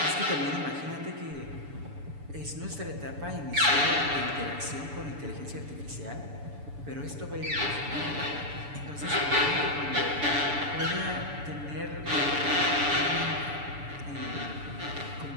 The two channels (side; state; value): left; late; 7.0 ms